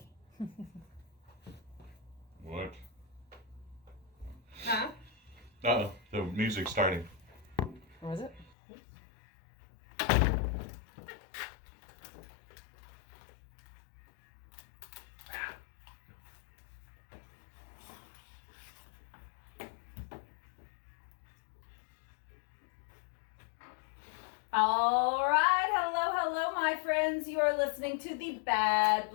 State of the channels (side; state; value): right; drops out; at 8.5 s